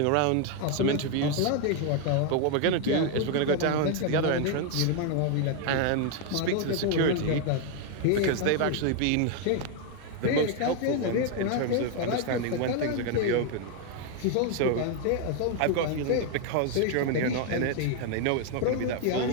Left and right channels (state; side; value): different; both; correlation 0.01